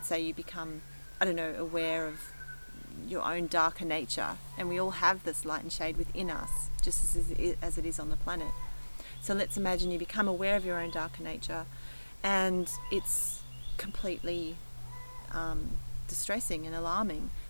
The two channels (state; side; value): inverted; both; correlation -1.00